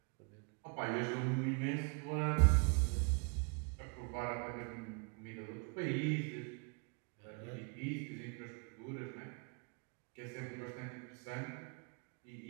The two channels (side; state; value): left; quieter; 35.8 dB